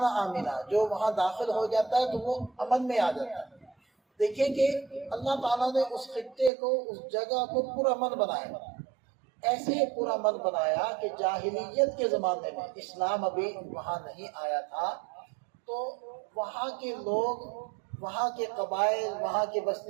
آمنا، جو وہاں داخل ہو جاتا ہے تو وہ امن میں آ جاتا ہے۔ دیکھیں کہ اللہ تعالیٰ نے اس خطے کو، اس جگہ کو پرامن بنایا، ایسے پرامن بنایا کہ جاہلیت کے زمانے میں، اسلام ابھی وہاں نہیں آیا تھا، تو وہاں کے لوگ، وہاں کے قبائل، وہاں کے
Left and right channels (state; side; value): drops out; left; at 6.5 s